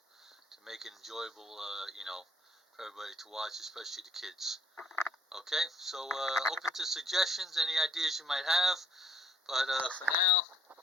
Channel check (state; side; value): normal; both; correlation 0.61